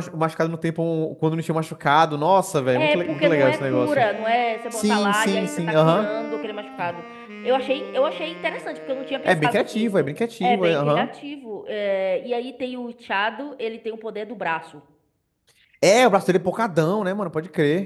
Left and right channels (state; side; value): identical; both; correlation 1.00